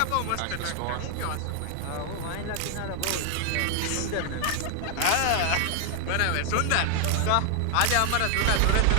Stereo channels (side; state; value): both; different; correlation 0.00